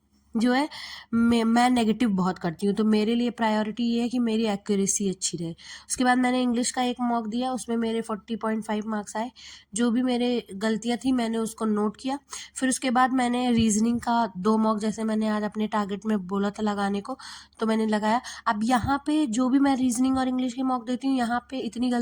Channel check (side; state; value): both; identical; correlation 1.00